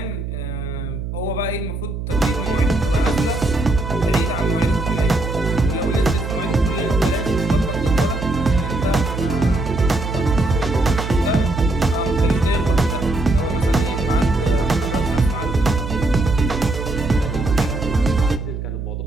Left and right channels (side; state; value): right; noise; hum, 5 dB below the sound